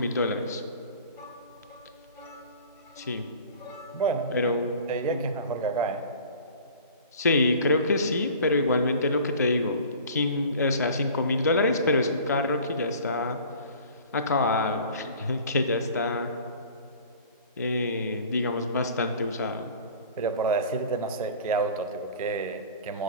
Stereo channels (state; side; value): inverted; both; correlation -0.44